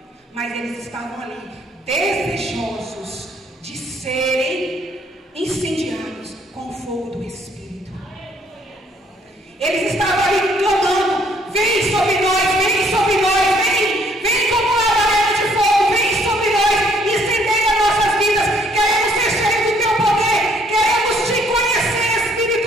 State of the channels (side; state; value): both; normal; correlation 0.65